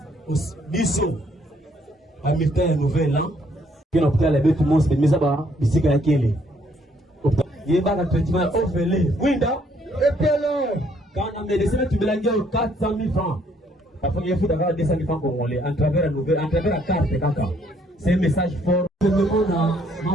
à militaire nouvelle an, qui est l'hôpital avec tout le monde, c'est mis à bas, ici, il y a quelqu'un. Il y a un traitement offert. Winda, et puis alors, quand on a médecin, tu me l'as dit 400 000 francs. La première fois d'avoir 200 000 francs congolais, à travers la nouvelle, à travers la carte, c'est un message fort. Je me demande à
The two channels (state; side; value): normal; both; correlation 0.67